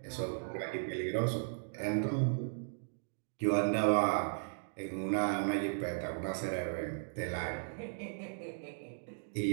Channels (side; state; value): left; silent; digital silence